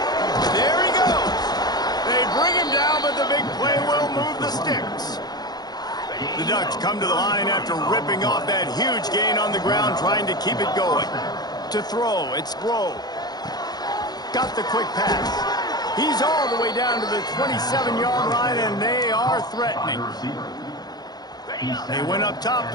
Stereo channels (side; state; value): right; late; 0.19 ms